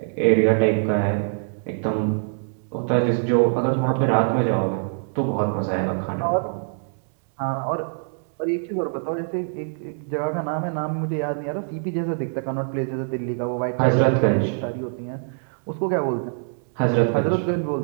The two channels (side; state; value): left; silent; digital silence